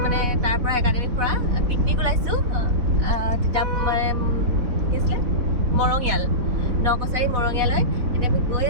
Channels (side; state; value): left; late; 4.1 ms